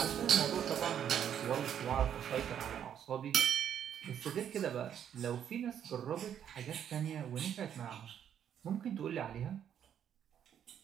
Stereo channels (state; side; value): quieter; left; 9.2 dB